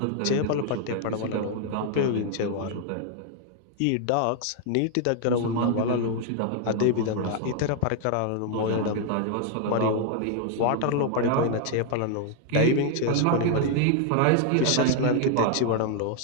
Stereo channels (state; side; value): different; both; correlation 0.00